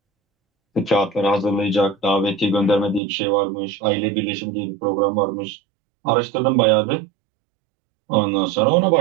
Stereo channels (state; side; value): drops out; left; at 3.0 s